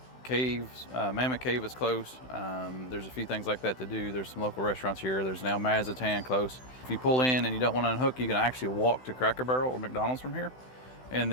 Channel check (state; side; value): late; right; 16 ms